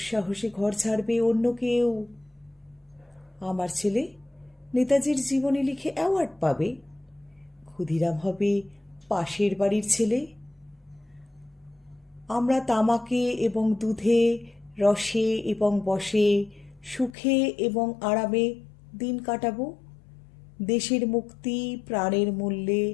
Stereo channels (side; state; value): right; drops out; at 17.2 s